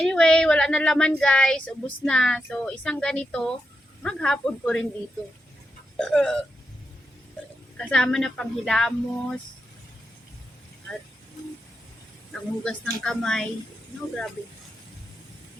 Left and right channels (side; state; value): both; normal; correlation 0.86